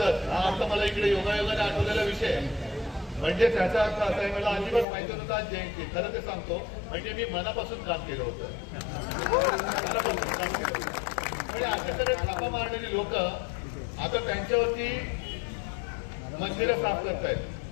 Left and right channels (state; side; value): drops out; right; at 4.9 s